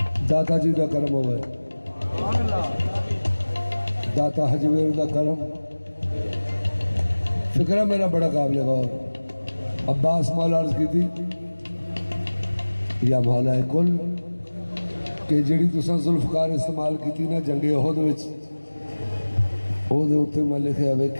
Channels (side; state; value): both; inverted; correlation -1.00